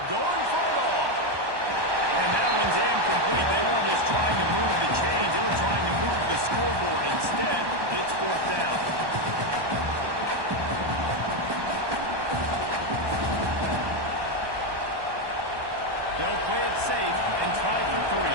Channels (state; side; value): late; left; 1.1 ms